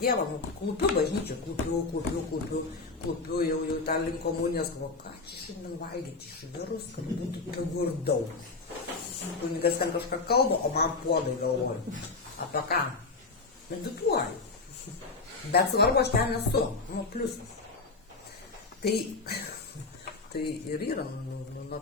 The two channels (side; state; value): right; quieter; 3.9 dB